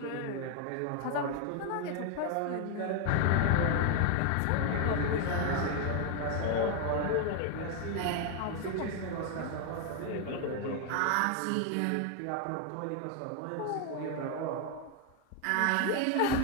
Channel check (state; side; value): different; both; correlation 0.01